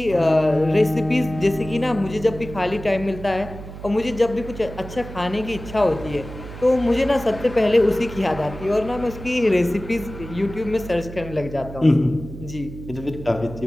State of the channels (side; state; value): right; noise; hum, 12 dB below the sound